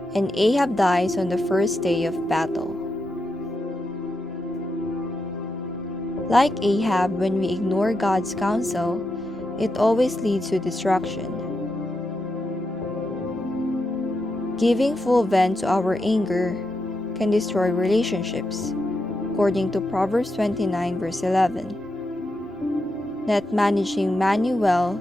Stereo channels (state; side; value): normal; both; correlation 0.85